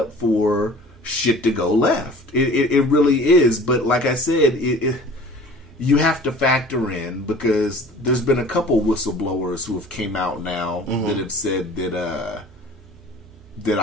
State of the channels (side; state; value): both; normal; correlation 0.46